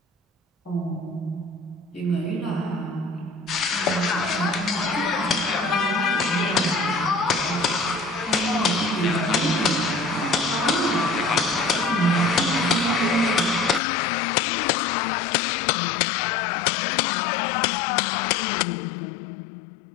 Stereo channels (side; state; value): right; drops out; at 13.8 s